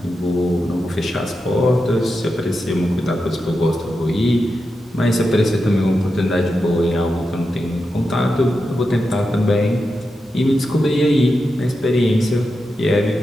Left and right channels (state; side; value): normal; both; correlation 0.89